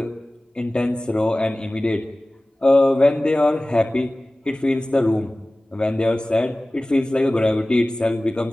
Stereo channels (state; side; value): normal; both; correlation 0.98